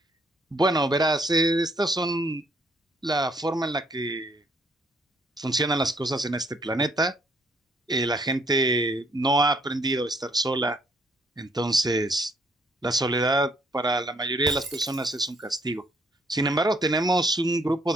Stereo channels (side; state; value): both; normal; correlation 0.67